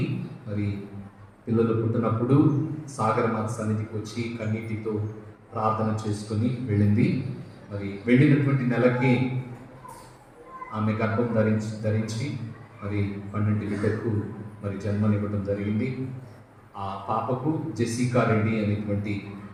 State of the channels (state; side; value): identical; both; correlation 1.00